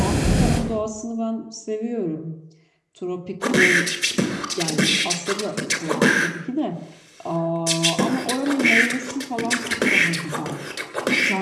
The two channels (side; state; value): both; identical; correlation 1.00